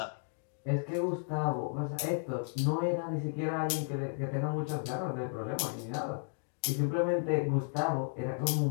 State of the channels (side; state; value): right; silent; 55 dB below the other